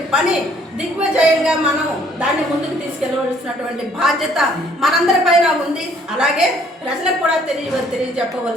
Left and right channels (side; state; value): both; normal; correlation 0.61